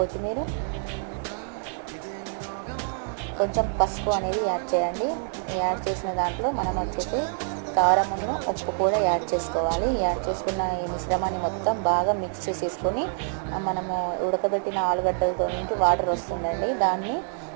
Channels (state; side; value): silent; left; 61 dB below the other